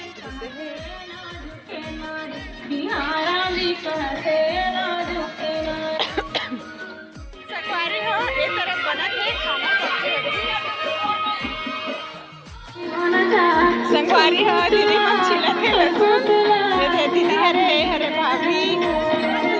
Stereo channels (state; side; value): identical; both; correlation 1.00